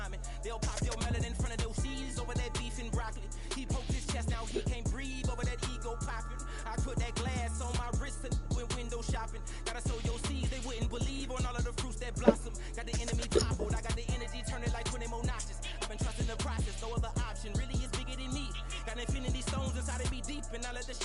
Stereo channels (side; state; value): both; identical; correlation 1.00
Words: They'll pop your melon in front of those seeds over that beef and broccoli. He poked his chest, now he can't breathe over that ego popping. I put that glass on my wrist and went window shopping. Gotta sow your seeds, they wouldn't believe on all of the fruits that blossom. Got the enemy toppled, I got the energy turning like 20 more notches. I've been trusting the process, no other option really is bigger than me. Got infinity stones inside of me deep, and I let the